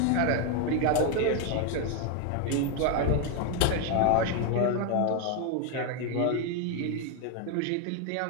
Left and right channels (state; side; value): different; both; correlation 0.01